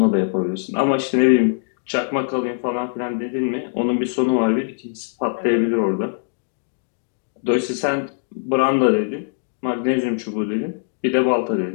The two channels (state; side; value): silent; right; digital silence